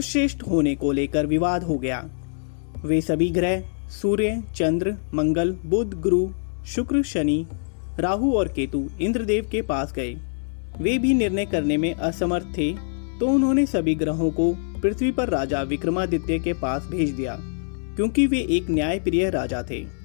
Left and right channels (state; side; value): silent; right; 63 dB below the other